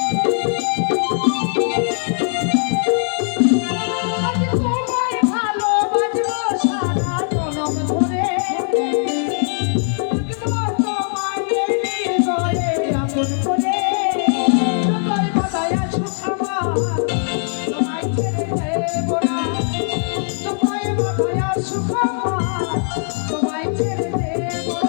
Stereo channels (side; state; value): right; silent; digital silence